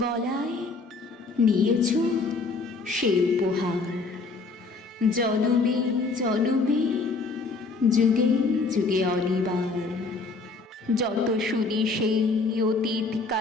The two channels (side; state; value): right; quieter; 4.0 dB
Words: গলায়, নিয়েছ সে উপহার। জনমে জনমে যুগে যুগে অনিবার। যত শুনি সেই অতীত